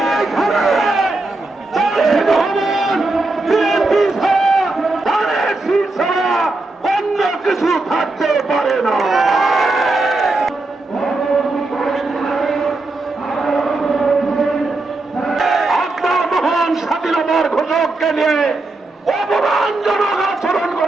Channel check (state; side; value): quieter; left; 3.1 dB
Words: এইখানে জাতীয় ভবন বিএনপি ছাড়া, ধানের শীষ ছাড়া অন্য কিছু থাকতে পারে না। স্বাধীনতার ঘোষককে নিয়ে অপমানজনক আচরণ